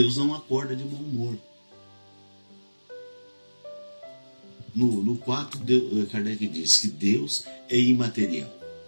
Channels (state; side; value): inverted; both; correlation -1.00